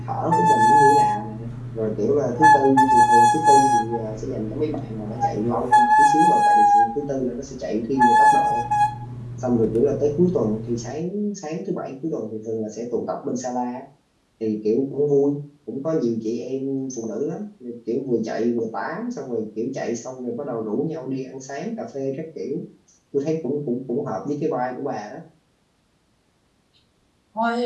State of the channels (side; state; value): both; identical; correlation 1.00